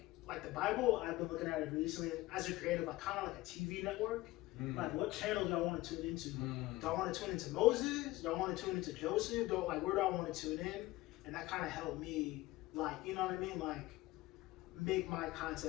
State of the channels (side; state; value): right; quieter; 18.5 dB